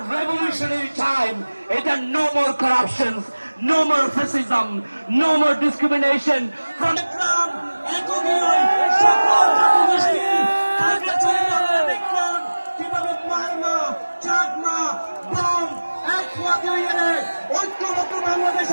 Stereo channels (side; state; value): both; inverted; correlation -1.00